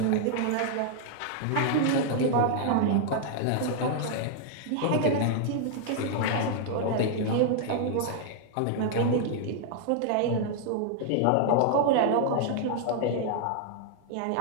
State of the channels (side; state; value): both; different; correlation 0.00